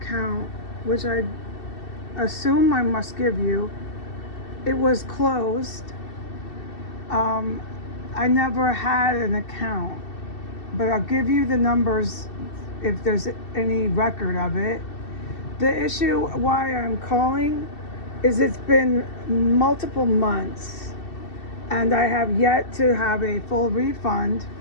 which I assume I must give you. It was closed. I never had an account, but I'll give you the numbers if there's any record of it. The issue why I'm calling is it's been multiple months and I have yet to have a full refund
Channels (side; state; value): right; late; 2.7 ms